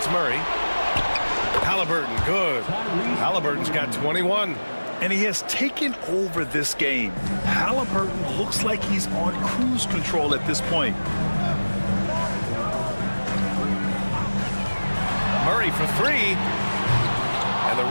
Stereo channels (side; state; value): both; inverted; correlation -1.00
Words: Murray. Halliburton, good. Halliburton's got 21. And he has taken over this game. Halliburton looks like he's on cruise control at this point. Murray for 3. And the